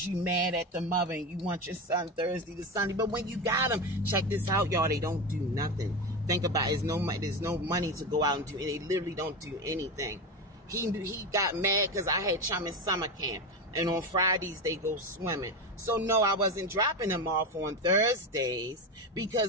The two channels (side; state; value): both; normal; correlation 0.18